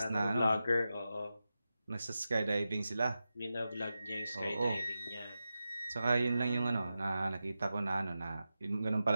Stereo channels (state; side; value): inverted; both; correlation -0.92